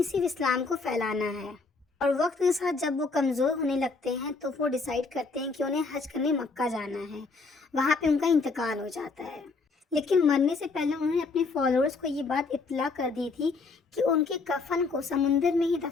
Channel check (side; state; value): right; quieter; 4.1 dB